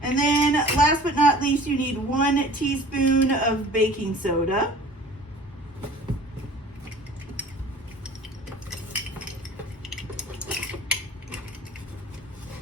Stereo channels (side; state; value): both; normal; correlation 0.46